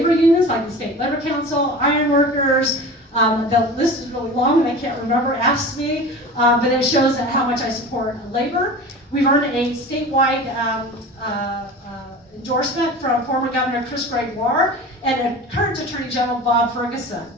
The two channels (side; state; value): both; normal; correlation 0.35